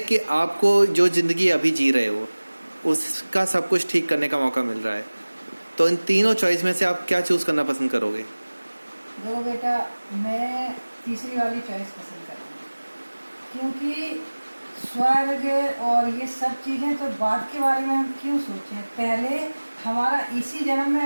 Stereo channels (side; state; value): both; inverted; correlation -1.00